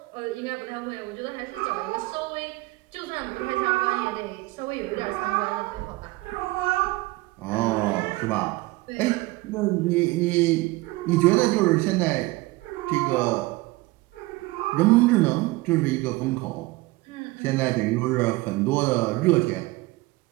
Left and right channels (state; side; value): quieter; left; 21.1 dB